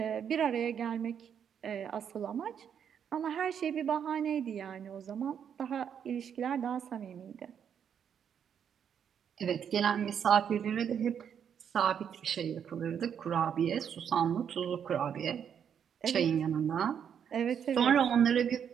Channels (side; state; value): left; quieter; 8.2 dB